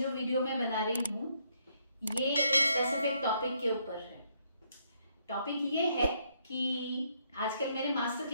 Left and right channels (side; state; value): both; inverted; correlation -0.72